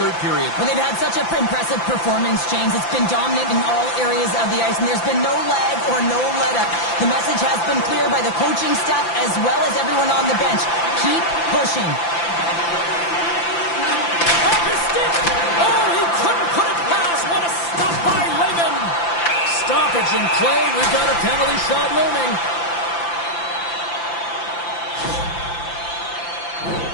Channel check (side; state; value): right; late; 5.9 ms